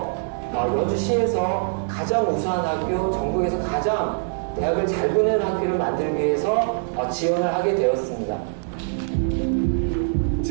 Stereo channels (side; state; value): left; silent; digital silence